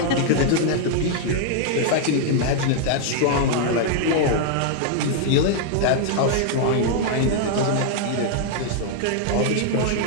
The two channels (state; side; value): different; both; correlation 0.00